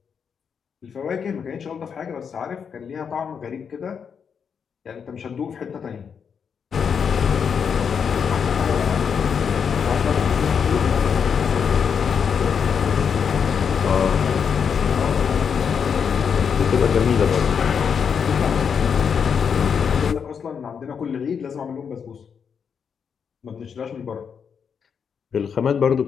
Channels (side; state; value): right; quieter; 6.8 dB